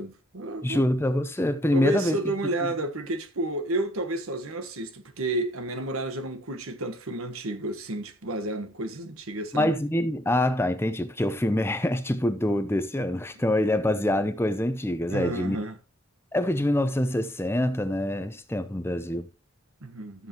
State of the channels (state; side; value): normal; both; correlation 0.69